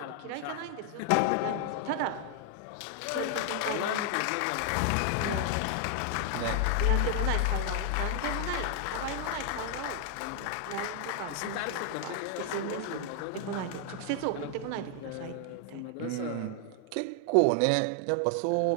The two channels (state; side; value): different; both; correlation 0.00